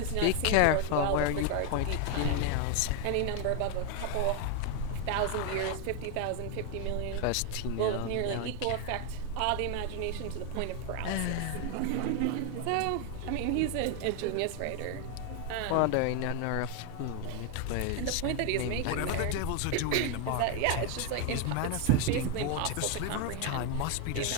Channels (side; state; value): both; different; correlation 0.01